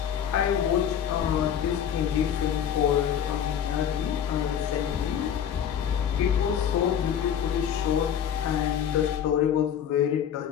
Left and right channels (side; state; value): right; quieter; 9.0 dB